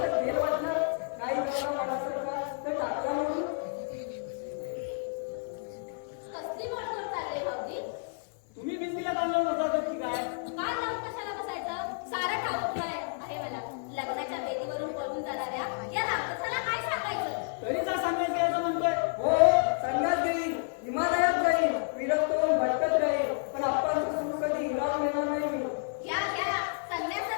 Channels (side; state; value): right; silent; 57 dB below the other